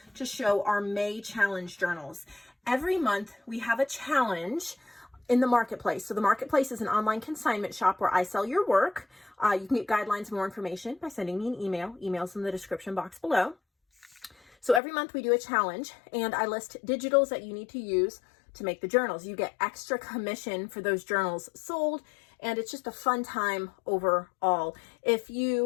to show our May challenge journals. Every month we have a challenge in the marketplace. So the marketplace is an online consignment shop where I sell your work. You can get guidelines and more information by sending me an email. Email's in the description box below. So every month we do a challenge and I list digitals that you need to use to make the journals. You get extra commission for those journals sold, and it's just a fun time overall. If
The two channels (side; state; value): right; drops out; at 14.8 s